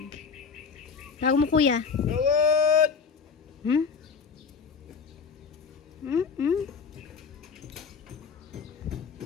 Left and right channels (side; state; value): right; quieter; 5.8 dB